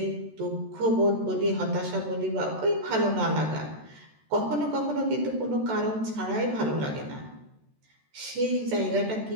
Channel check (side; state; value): left; late; 13 ms